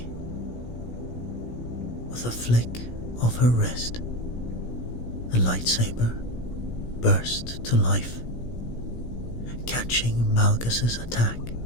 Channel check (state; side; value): late; right; 17 ms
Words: With a flick of her wrist, the lightsaber burst to life, catching Malgus's attack